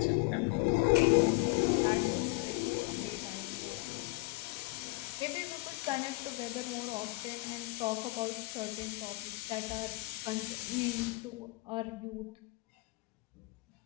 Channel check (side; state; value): right; quieter; 23.5 dB